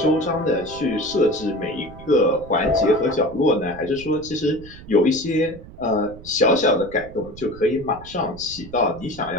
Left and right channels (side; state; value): right; noise; rumble, 17 dB below the sound